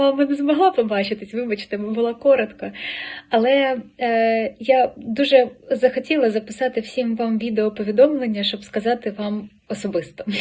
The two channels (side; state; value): both; identical; correlation 1.00